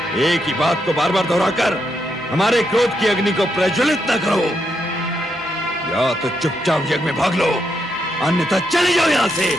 एक ही बात को बार बार दोहराकर हमारे क्रोध की अग्नि को प्रज्वलित न करो। या तो चुपचाप यज्ञ में भाग लो, अन्यथा चले जाओ यहाँ से,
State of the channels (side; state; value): both; normal; correlation 0.80